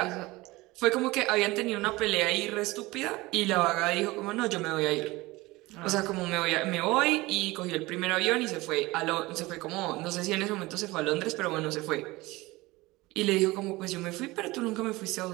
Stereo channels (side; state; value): left; quieter; 20.9 dB